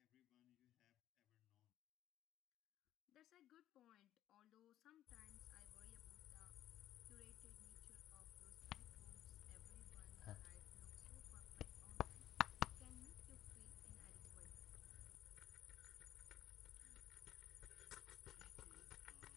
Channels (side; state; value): right; quieter; 12.4 dB